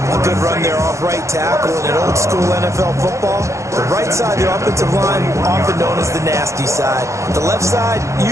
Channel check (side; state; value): left; late; 0.15 ms